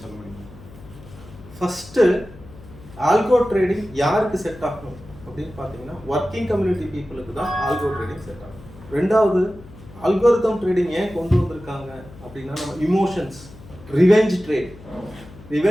சொல்ல முடியுமா? ஃபஸ்ட்டு ஆல்கோ ட்ரேடிங் யாருக்கு செட் ஆகும் அப்படின்னு பார்த்தீங்கன்னா, ஒர்க்கிங் கம்யூனிட்டி பீப்புளுக்கு தான் ஆல்கோ ட்ரேடிங் செட் ஆகும். ரெண்டாவது, அல்கோரிதம் ட்ரேடிங் ஏன் கொண்டு வந்திருக்காங்க அப்படின்னா, நம்ம இமோஷன்ஸ், ரிவெஞ்ச்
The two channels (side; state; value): left; noise; hum, 19 dB below the sound